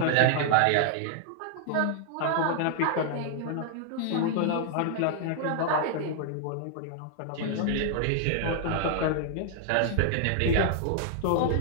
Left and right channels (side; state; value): both; different; correlation 0.00